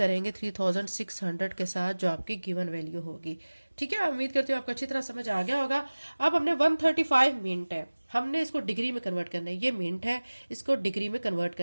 3600 के साथ जो आपकी गिवन वैल्यू होगी, ठीक है। उम्मीद करती हूँ आपको अच्छी तरह समझ आ गया होगा। अब हमने 135 मिनट है, हमने इसको डिग्री में कन्वर्ट करना है। ये मिनट है, इसको डिग्री में कन्वर्ट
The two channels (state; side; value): inverted; both; correlation -1.00